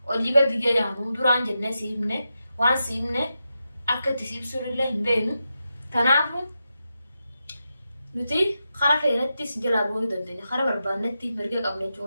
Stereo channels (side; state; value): both; inverted; correlation -0.88